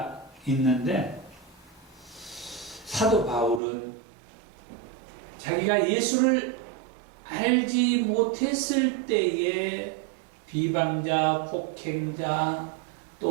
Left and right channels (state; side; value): drops out; left; at 3.6 s